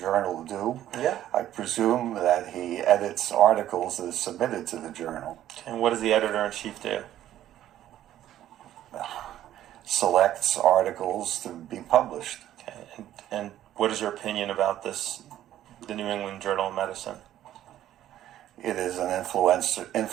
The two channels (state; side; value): quieter; left; 12.4 dB